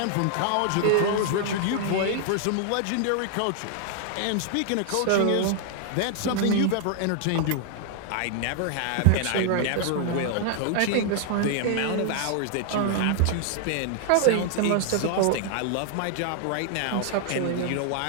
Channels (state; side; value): different; both; correlation 0.00